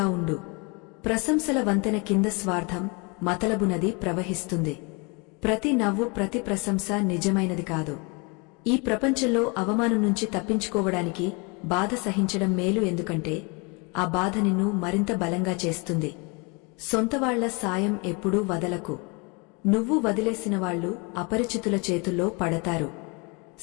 ఉండు. ప్రశంసల వంతెన కింద స్వార్థం, మతలబు నది ప్రవహిస్తుంది. ప్రతి నవ్వు, ప్రతి ప్రశంస నిజమైనది కాదు. ఈ ప్రపంచంలో అవమానం నుంచి తప్పించుకోవడానికి బాధ సహించడం మేలు. ఎందుకంటే ఆ బాధ నిన్ను మరింత బలంగా చేస్తుంది. సొంతవాళ్ల సాయం ఎప్పుడూ వదలకు. నువ్వు వదిలేసిన వాళ్లు అపరిచితుల చేతుల్లో పడతారు.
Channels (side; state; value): right; quieter; 30.4 dB